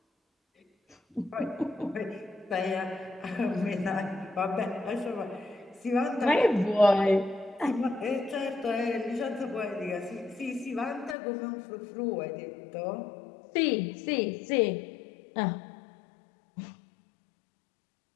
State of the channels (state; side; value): drops out; right; at 11.2 s